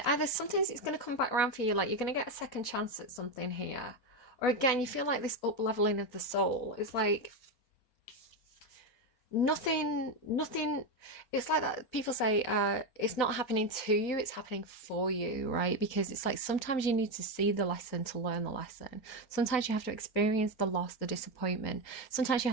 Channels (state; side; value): late; right; 4.4 ms